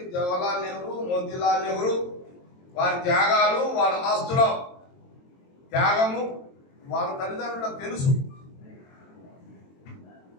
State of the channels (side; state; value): right; late; 22 ms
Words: జవహర్లాల్ నెహ్రూ, మోతీలాల్ నెహ్రూ వారి త్యాగాలు, వాళ్ళ ఆస్తుల త్యాగము వాళ్ళ తల్లిదండ్రులకు తెలుసు.